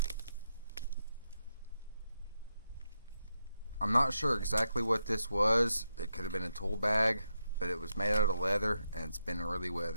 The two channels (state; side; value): inverted; both; correlation -0.84